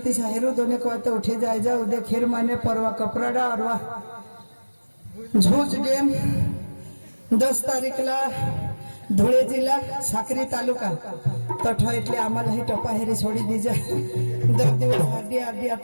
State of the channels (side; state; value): both; inverted; correlation -1.00